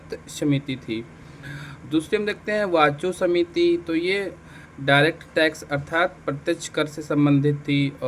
समिति थी। दूसरी हम देखते हैं वाचो समिति, तो ये डायरेक्ट टैक्स अर्थात प्रत्यक्ष कर से संबंधित थी।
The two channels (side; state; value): both; identical; correlation 1.00